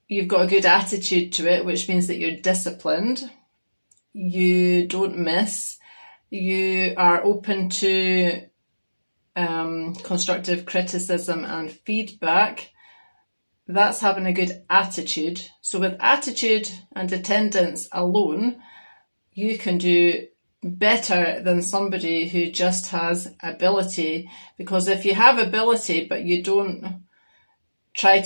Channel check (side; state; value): both; inverted; correlation -1.00